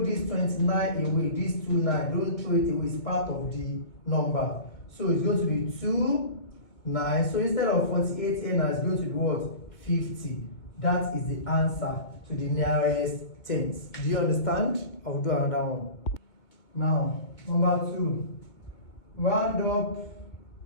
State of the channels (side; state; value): right; late; 2.2 ms